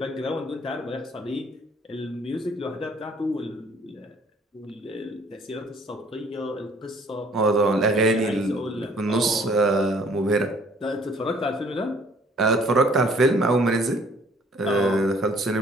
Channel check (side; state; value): both; normal; correlation 0.58